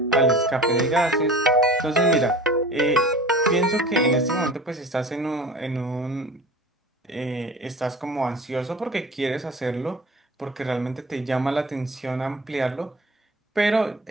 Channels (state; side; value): normal; both; correlation 0.39